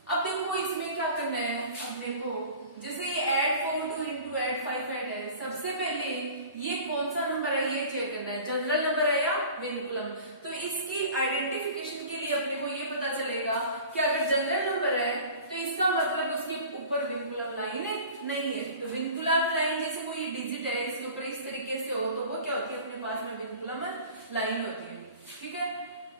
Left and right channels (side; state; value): both; inverted; correlation -0.42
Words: अब देखो इसमें क्या करना है अपने को, जैसे ये ऐड 4 2 इंटू ऐड 5 ऐड है। सबसे पहले ये कौन सा नंबर है ये चेक करना है, जनरल नंबर है या विनकुलम। तो इसकी आइडेंटिफिकेशन के लिए अपने को ये पता चलेगा कि अगर जनरल नंबर है तो इसका मतलब उसके ऊपर विनकुलम लाइन नहीं है। तो विनकुलम लाइन जैसे कोई डिजिट है इसके ऊपर इस तरीके से हो तो वो क्या होती है, अपने पास में विनकुलम लाइन होती है। ठीक है,